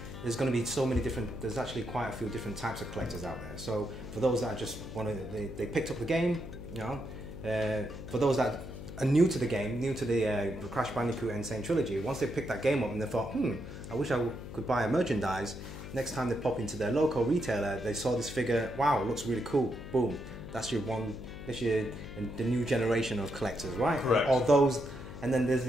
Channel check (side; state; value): left; noise; hum, 11 dB below the sound